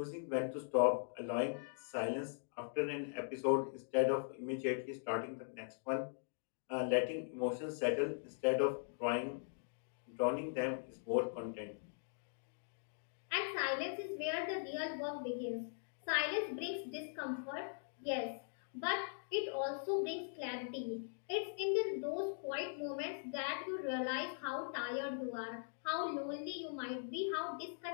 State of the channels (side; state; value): right; silent; digital silence